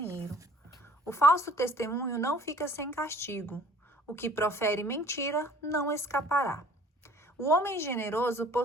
O falso testemunho não fica sem castigo. O que profere mentira não escapará. O homem generoso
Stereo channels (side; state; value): both; normal; correlation 0.53